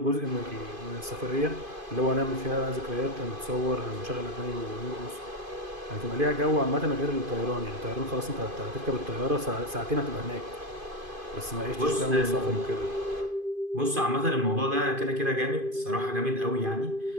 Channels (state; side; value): late; left; 2.5 ms